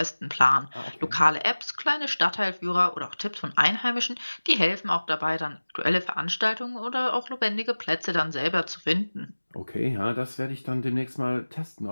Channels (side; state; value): both; inverted; correlation -1.00